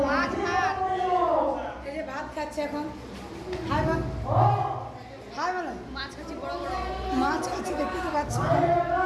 মাছ ভাত এই যে ভাত খাচ্ছে এখন হাই বল হাই বলো মাছ খাচ্ছি বড় বড় মাছ খাচ্ছে দেখতে তো পাচ্ছি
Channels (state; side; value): identical; both; correlation 1.00